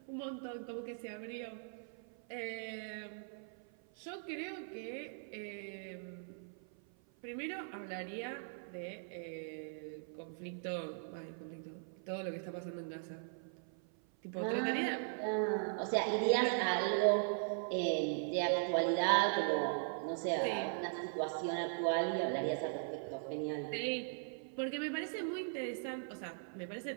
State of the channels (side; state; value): left; silent; 51 dB below the other